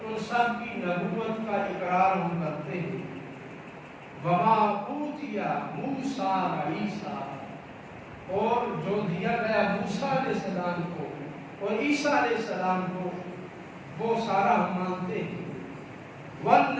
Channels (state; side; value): identical; both; correlation 1.00